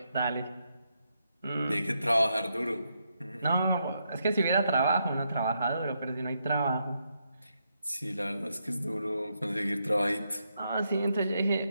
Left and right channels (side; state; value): both; inverted; correlation -0.80